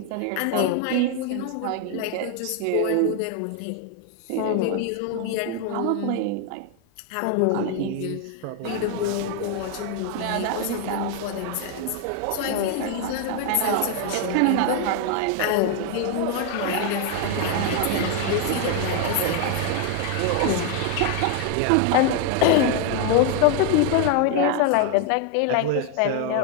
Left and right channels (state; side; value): different; both; correlation 0.00